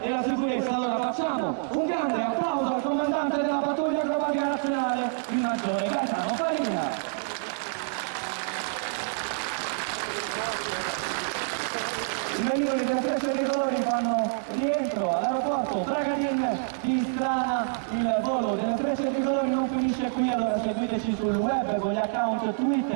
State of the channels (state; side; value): silent; left; 60 dB below the other